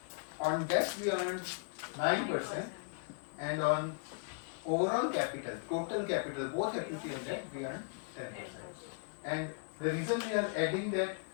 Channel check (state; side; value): quieter; right; 37.3 dB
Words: On debt, we earned 9%. And on overall capital, total capital, both equity and debt, we earned 10%. And the reason we are adding that,